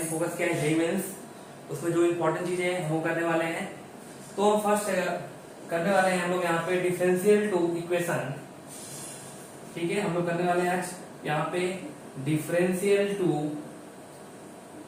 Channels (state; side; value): identical; both; correlation 1.00